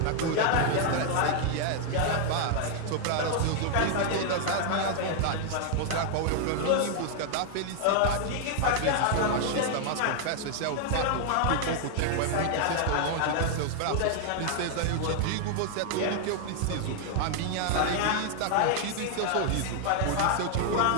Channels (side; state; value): both; different; correlation 0.00